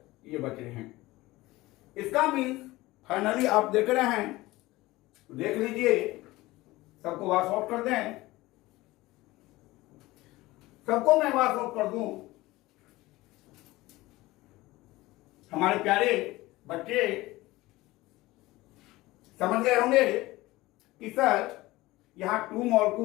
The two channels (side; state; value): right; quieter; 19.2 dB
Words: ये बच रहे हैं। इसका मीन्स फाइनली आप देख रहे हैं, देख लीजिए, सबको वॉश आउट कर दें, सबको मैं वॉश आउट कर दूं। हमारे प्यारे बच्चे समझ गए होंगे कि सर यहां 2